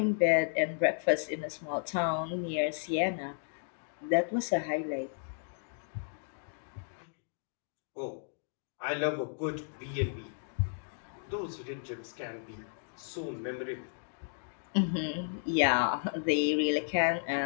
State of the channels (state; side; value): silent; right; digital silence